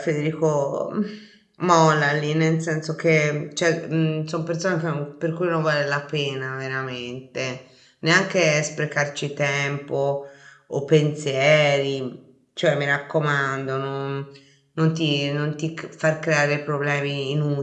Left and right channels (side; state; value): both; identical; correlation 1.00